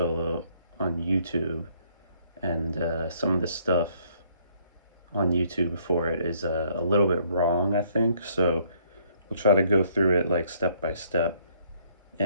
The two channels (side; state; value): both; inverted; correlation -0.66